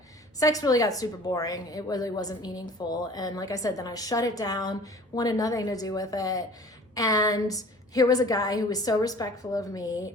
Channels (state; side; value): normal; both; correlation 0.47